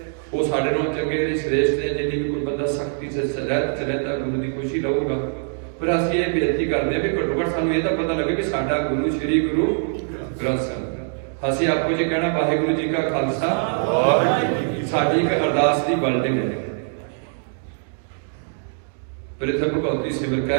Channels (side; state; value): left; silent; digital silence